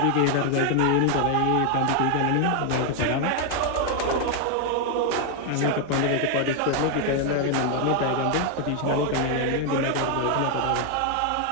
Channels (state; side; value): different; both; correlation 0.00